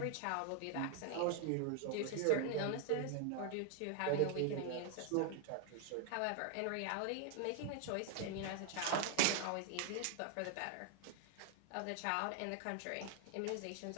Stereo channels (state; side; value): different; both; correlation 0.00